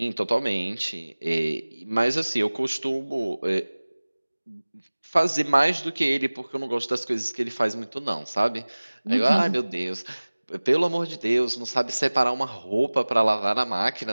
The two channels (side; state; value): both; inverted; correlation -1.00